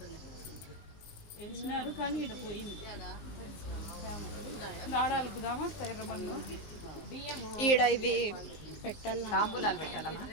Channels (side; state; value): right; late; 19 ms